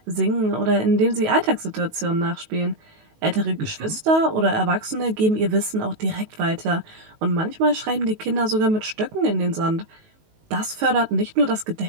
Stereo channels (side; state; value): left; late; 19 ms